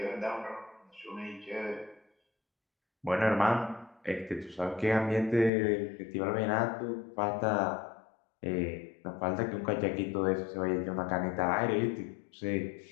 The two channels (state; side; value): drops out; right; at 5.5 s